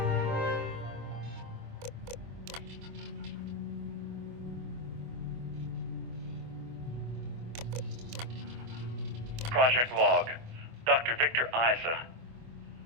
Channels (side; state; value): left; late; 25 ms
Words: Project Log, Dr. Victor Isa.